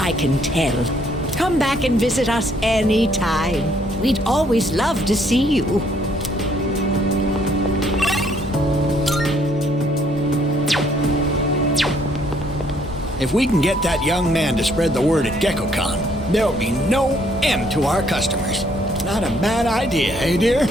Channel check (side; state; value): both; normal; correlation 0.66